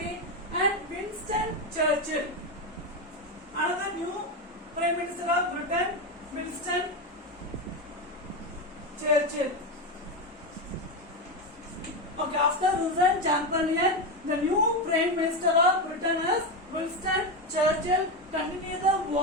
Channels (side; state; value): both; normal; correlation 0.13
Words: and Winston Churchill, another new Prime Minister of Britain, Winston Churchill. Okay, after resigned Chamberlain, the new Prime Minister of Britain is Winston Churchill. Continue the